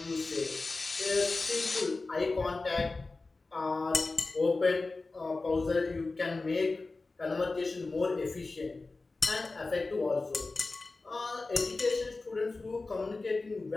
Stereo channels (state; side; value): quieter; right; 3.6 dB